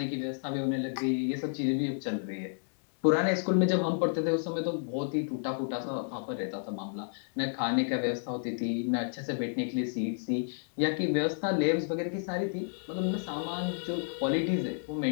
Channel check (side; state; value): right; silent; digital silence